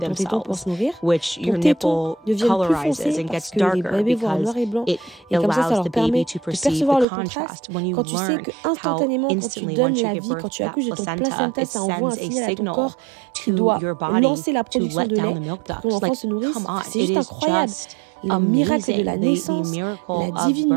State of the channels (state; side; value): drops out; left; at 7.1 s